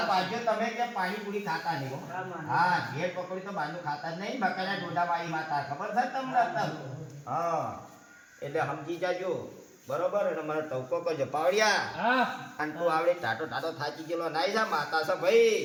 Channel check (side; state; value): both; identical; correlation 1.00